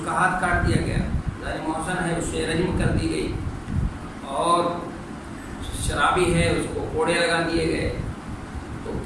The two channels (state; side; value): identical; both; correlation 1.00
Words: کا ہاتھ کاٹ دیا گیا، دانی محسن ہے، اسے رجم کر دی گئی، اور شرابی ہے، اس کو کوڑے لگا دیے گئے، تو